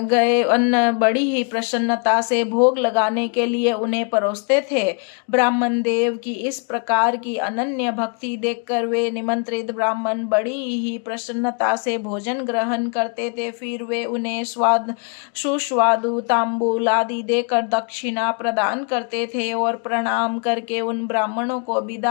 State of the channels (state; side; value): quieter; right; 39.4 dB